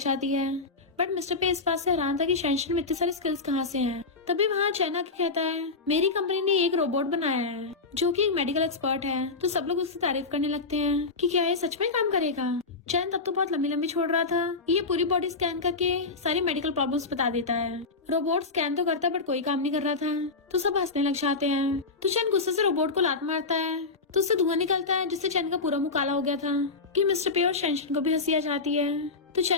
है। बट मिस्टर पे इस बात से हैरान था कि शेंशन में इतनी सारी स्किल्स कहाँ से हैं। तभी वहाँ चैन आके कहता है मेरी कंपनी ने एक रोबोट बनाया है जो कि एक मेडिकल एक्सपर्ट है। तो सब लोग उसकी तारीफ करने लगते हैं कि क्या ये सच में काम करेगा। चैन तब तो बहुत लंबी लंबी छोड़ रहा था, ये पूरी बॉडी स्कैन करके सारी मेडिकल प्रॉब्लम्स बता देता है। रोबोट स्कैन तो करता है बट कोई काम नहीं कर रहा था, तो सब हंसने लग जाते हैं। तो चैन गुस्से से रोबोट को लात मारता है तो उससे धुआं निकलता है जिससे चैन का पूरा मुंह काला हो गया था कि मिस्टर पे और शेंशन को भी हंसी आ जाती है। तो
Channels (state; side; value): quieter; right; 4.0 dB